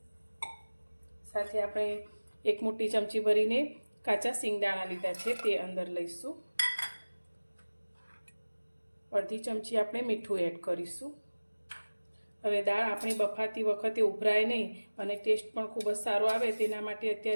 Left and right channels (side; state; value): both; inverted; correlation -1.00